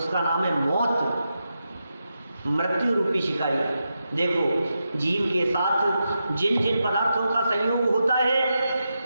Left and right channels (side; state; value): both; inverted; correlation -0.87